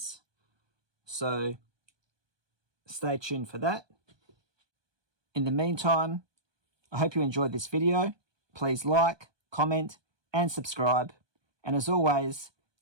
So stay tuned for that. In the meantime, I hope you enjoyed this video. Please like, comment, and subscribe. And as always,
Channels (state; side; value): late; left; 1.2 ms